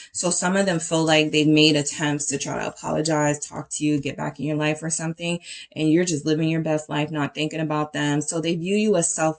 So some of them feel like they've made attempts to try to apologize, talk to you, get back in your life or something, and you're just living your best life, not thinking about them. So they view you as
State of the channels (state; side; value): identical; both; correlation 1.00